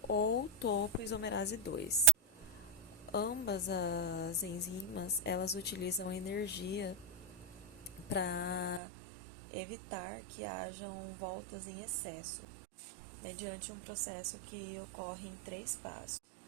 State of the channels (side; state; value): left; drops out; at 8.8 s